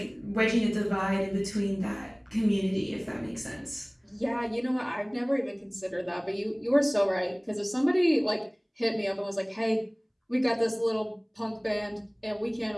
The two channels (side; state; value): both; identical; correlation 1.00